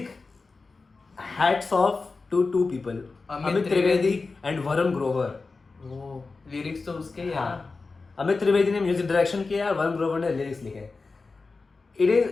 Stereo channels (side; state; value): right; quieter; 4.0 dB